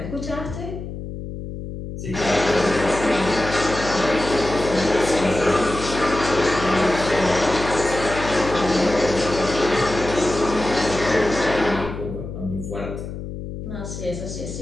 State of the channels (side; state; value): left; noise; hum, 8 dB below the sound